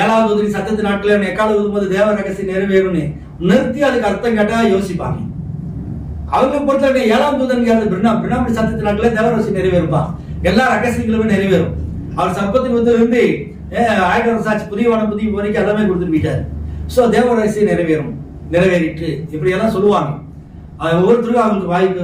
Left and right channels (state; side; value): identical; both; correlation 1.00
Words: தூதரின் சத்தத்து நாட்கள் எக்கால ஊதும்போது தேவ ரகசியம் நிறைவேறும்னு நிறுத்தி அதுக்கு அர்த்தம் கேட்டா யோசிப்பாங்க. அவங்க பொறுத்தவரை 7ஆம் தூதன் பிரணாமி சத்தத்து நாட்கள் தேவ ரகசியம் நிறைவேறுப்பா, எல்லா ரகசியங்களுமே நிறைவேறும். அவர் சர்ப்பத்தின் இருந்து 1000 வருஷம் ஆச்சு, புதிய வானம் புதிய வரைக்கும் எல்லாமே கொடுத்துட்டு போயிட்டாரு. சோ தேவ ரகசியம் நிறைவேறும், நிறைவேறிட்டு இப்படி எல்லாம் சொல்லுவாங்க. ஒவ்வொருத்தருக்கும் அவங்களுக்கு